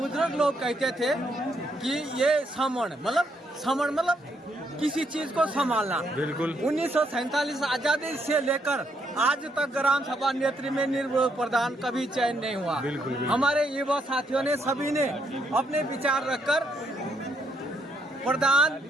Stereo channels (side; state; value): both; normal; correlation 0.75